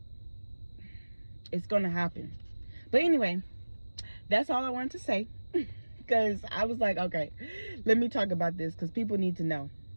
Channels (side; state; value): both; inverted; correlation -1.00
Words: it's going to happen. But anyway, that's all I wanted to say. Because I was like, okay, let me talk about this because people need to know.